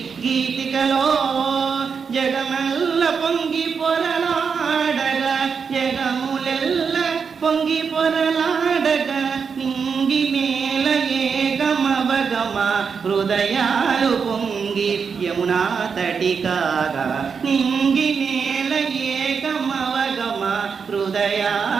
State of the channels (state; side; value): quieter; left; 6.0 dB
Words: గీతికలో జగమెల్ల పొంగి పొరలాడగా, జగములెల్ల పొంగి పొరలాడగా, నింగి మేల ఏగమవగమ హృదయాలు పొంగి యమునా తటి కాగా, నింగి మేల ఏగమవగమ